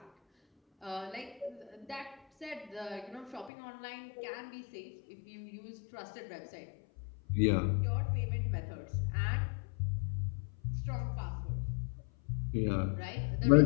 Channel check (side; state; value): right; drops out; at 3.5 s